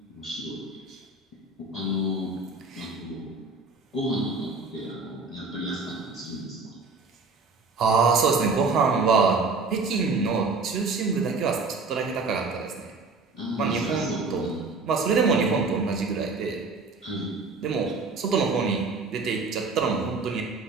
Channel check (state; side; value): quieter; left; 4.0 dB